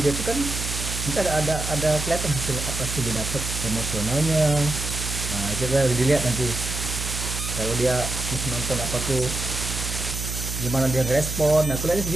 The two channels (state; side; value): noise; right; hum, 5 dB below the sound